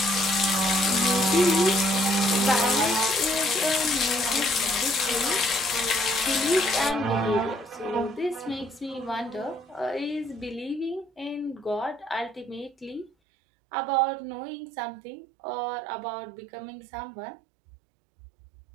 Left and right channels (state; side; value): drops out; left; at 13.1 s